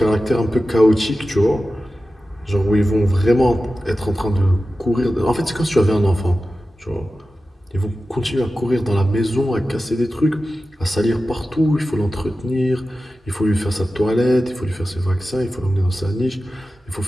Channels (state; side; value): normal; both; correlation 0.94